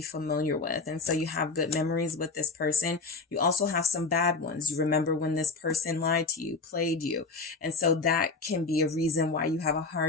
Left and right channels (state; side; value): quieter; right; 3.9 dB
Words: familiar with. And so you have good memories with this person. You also have some bad ones. You remember when this person lied to you, played you. And so that can be a reason why you have a